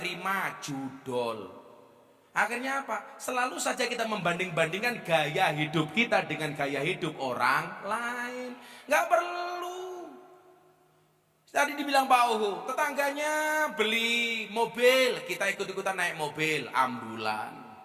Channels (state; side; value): identical; both; correlation 1.00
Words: judol. Akhirnya apa? Selalu saja kita membanding-bandingkan gaya hidup kita dengan gaya hidup orang lain. Nggak perlu. Tadi dibilang Pak Uhu, tetangganya beli mobil, kita ikut-ikutan naik mobil, ambulan.